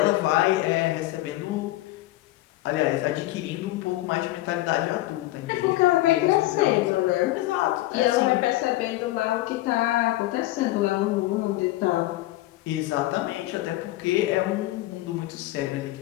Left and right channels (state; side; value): quieter; right; 17.0 dB